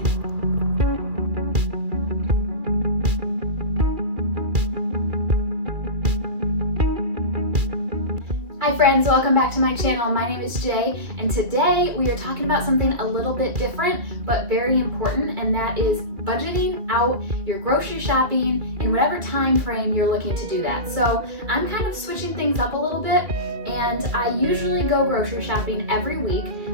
Hi friends, welcome back to my channel. My name is Jay, and today we are talking about something a little bit different but very important, and that is budgeting out your grocery shopping in whatever time frame you're looking to do that. So I'm kind of switching things up a little bit, and I usually go grocery shopping every week.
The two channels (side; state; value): left; late; 2.5 ms